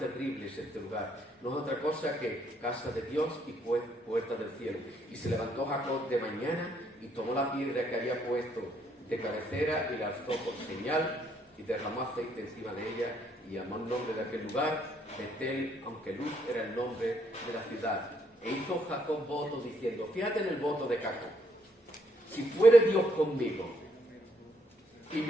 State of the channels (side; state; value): both; normal; correlation 0.71